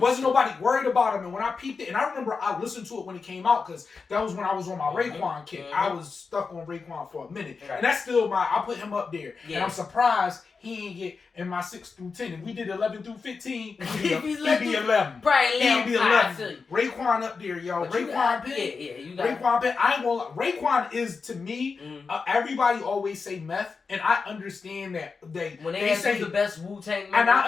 nobody worried about him. And when I peeped it, and I remember I listened to it when it came out because that was when I was on my Raekwon kick. I was stuck on Raekwon for a minute, and that's still I put him up there. And I'm surprised he ain't get in my 6 through 10. If we did 11 through 15, he'd be 11. Probably He'd be 11. Raekwon up there, yo. Raekwon Penn. Yeah, you got Raekwon Penn. I ain't gonna lie. Raekwon is, to me, everybody always say Meth, and I understand that when they say the best Wu-Tang member, and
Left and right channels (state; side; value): quieter; right; 4.9 dB